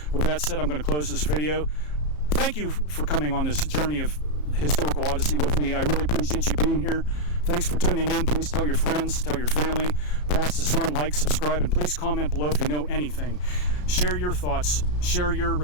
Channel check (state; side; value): late; right; 33 ms